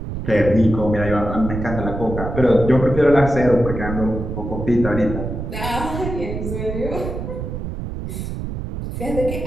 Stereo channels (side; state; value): right; noise; rumble, 5 dB below the sound